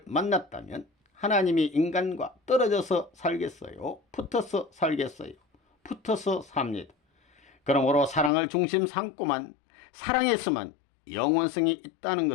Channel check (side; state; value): right; drops out; at 8.3 s